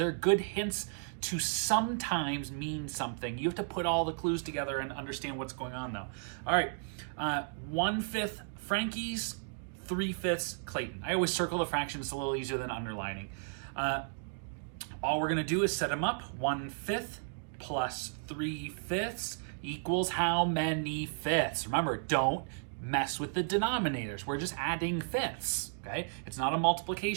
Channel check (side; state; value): left; silent; digital silence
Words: good hints to sometimes mean something. You have to put all the clues together and understand what's going on though. All right, 1/5 Frankie's, 3/5 Clayton. I always circle the fractions. It's a little easier than underlining. All we're gonna do is set them up. 1/5 plus 3/5 equals how many fifths? Remember, don't mess with the denominators. We're just adding fifths, okay? It's not a